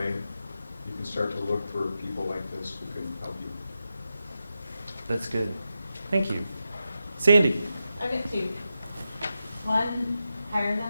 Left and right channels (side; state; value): both; inverted; correlation -0.89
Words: you can start to look for people like this who can help you. That's good. Thank you. Sandy. I've got two. One, hire